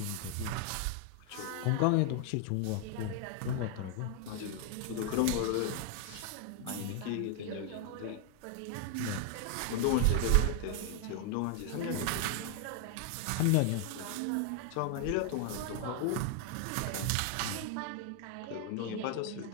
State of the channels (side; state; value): both; different; correlation 0.00